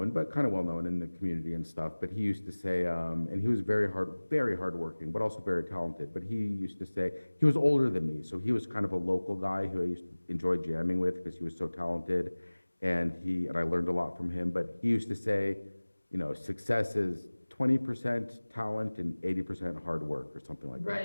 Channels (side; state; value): both; inverted; correlation -1.00